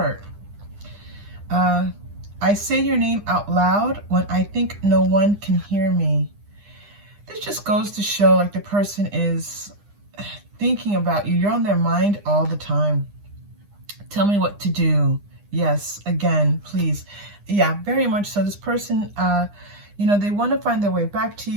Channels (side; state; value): left; late; 9.9 ms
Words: I say your name out loud when I think no one can hear me. This just goes to show like the person is thinking about you. You're on their mind all the time. Tell me what to do. Yes, again, please. Yeah, very much so. This person, they want to find their way back to